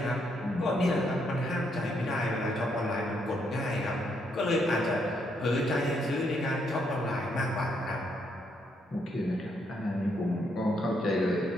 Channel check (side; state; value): both; normal; correlation 0.75